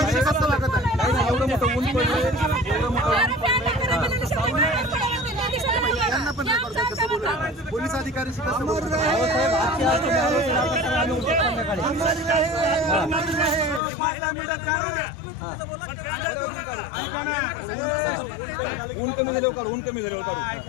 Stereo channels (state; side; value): drops out; right; at 13.8 s